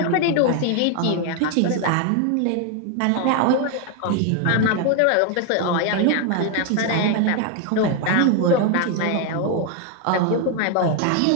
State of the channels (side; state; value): both; different; correlation 0.01